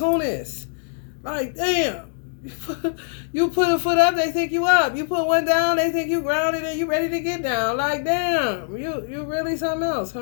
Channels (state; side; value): silent; right; digital silence